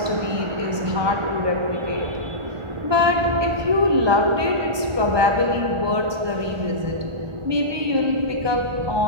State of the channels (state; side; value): late; left; 1.2 ms